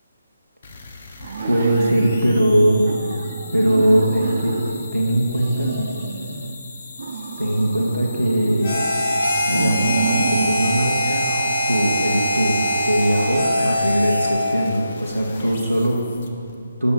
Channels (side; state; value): both; inverted; correlation -0.87